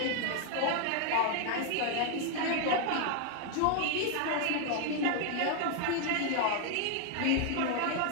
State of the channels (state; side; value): different; both; correlation 0.00